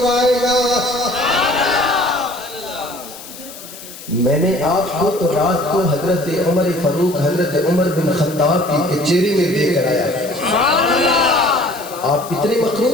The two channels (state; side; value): noise; left; hiss, 15 dB below the sound